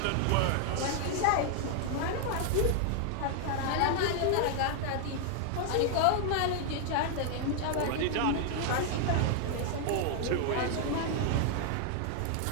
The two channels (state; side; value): different; both; correlation 0.00